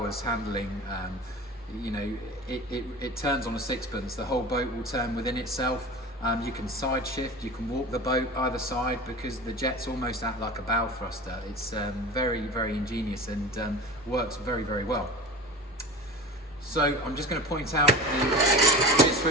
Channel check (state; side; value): normal; both; correlation 0.34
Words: handling. You know, it turns on a sixpence. The whole boat will turn within itself. You can side shift, you can walk the boat either side because the jets almost act like a bow thruster. It's very, very ingenious and works very, very well. So I'm just going to point out the